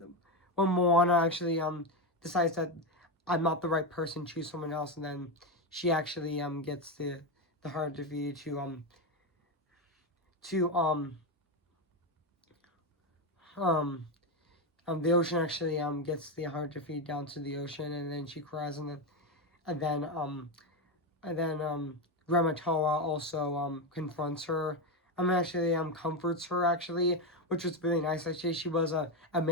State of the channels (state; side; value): normal; both; correlation 0.10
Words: when Moana actually decides that I'm not the right person, choose someone else, and then she actually gets the heart defeated to um the ocean actually gets the heart defeated down to the ocean, and then she cries, and then Grandma Toa also confronts her. Actually comforts her, actually, which was really nice. Actually, she was a